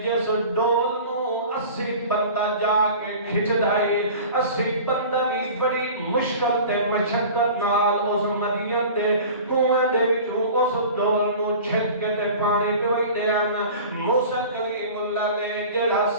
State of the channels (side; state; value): both; inverted; correlation -0.40